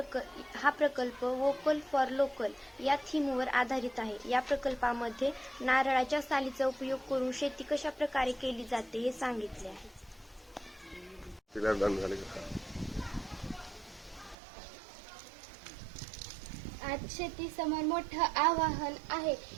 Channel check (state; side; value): drops out; left; at 14.4 s